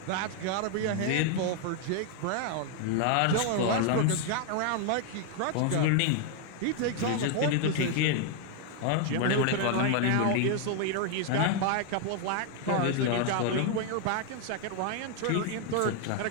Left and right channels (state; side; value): different; both; correlation 0.00